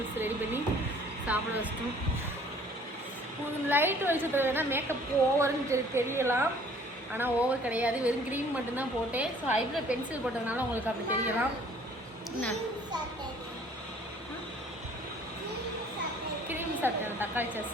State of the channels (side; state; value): both; normal; correlation 0.55